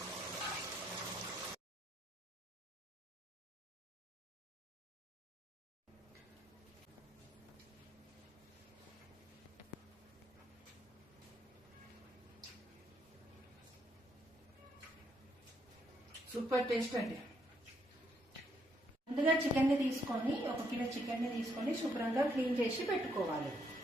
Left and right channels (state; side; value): normal; both; correlation 0.74